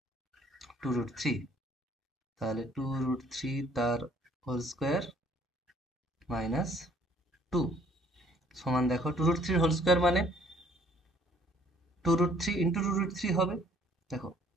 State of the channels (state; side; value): normal; both; correlation 0.61